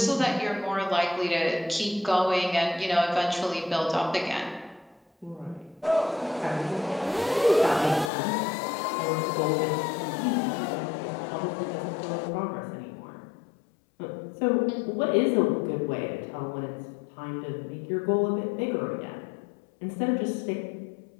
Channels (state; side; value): drops out; right; at 8.1 s